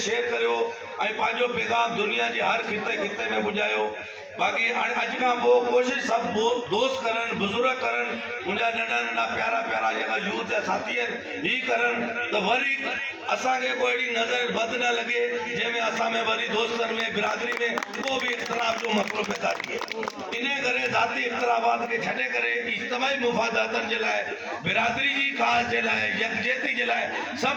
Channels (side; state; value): both; identical; correlation 1.00